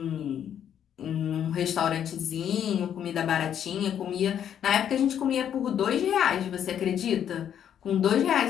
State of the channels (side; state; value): right; quieter; 9.4 dB